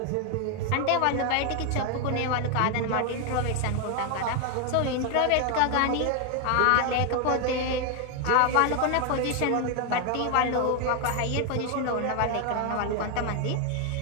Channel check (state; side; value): different; both; correlation 0.01